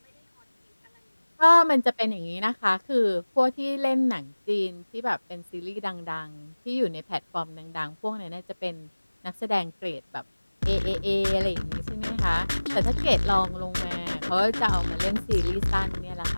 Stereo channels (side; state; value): both; inverted; correlation -1.00